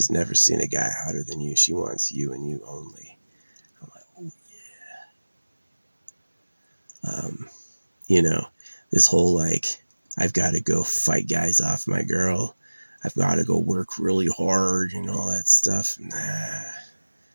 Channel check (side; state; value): both; inverted; correlation -1.00